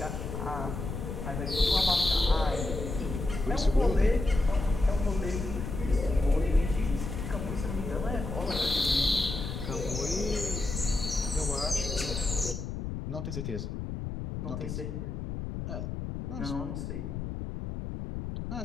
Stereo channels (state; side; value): noise; left; rumble, 5 dB below the sound